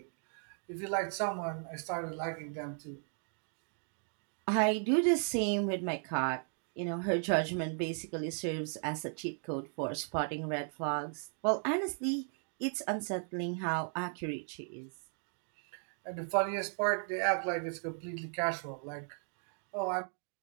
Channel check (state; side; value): silent; left; 54 dB below the other